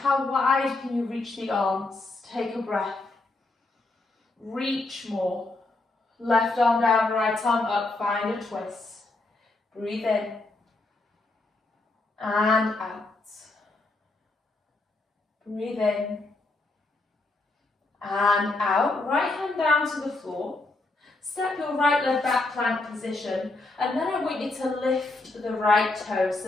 wide can you reach the arms? Take a breath. Reach more. Left arm down, right arm up, find a twist. Breathe in and out. Breathe in and out. Right hand down to the floor. Step your right leg back, plank position, and then I want you to lift the right toes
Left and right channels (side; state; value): right; quieter; 3.1 dB